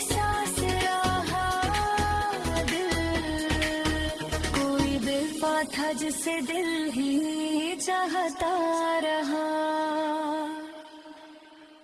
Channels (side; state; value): both; identical; correlation 1.00